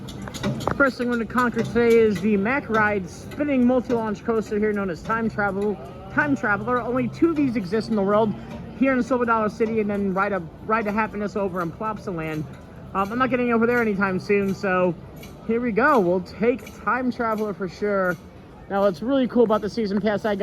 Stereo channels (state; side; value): identical; both; correlation 1.00